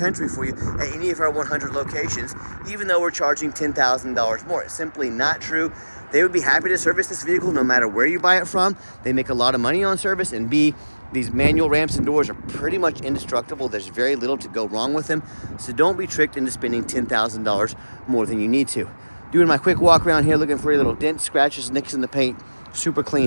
for you at any of our 100 locations, even though we're charging $10,000 more. It's simply not true. They would be happy to service this vehicle no matter where you buy it from. They make a lot of money on service, and B, these manual ramps and doors are pretty much indestructible. There's very little to go wrong with them. So don't be tricked into spending $10,000 more than you need to. Doing my quick walk around here, looking for any little dents, scratches, nicks in the paint. Super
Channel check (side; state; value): both; inverted; correlation -1.00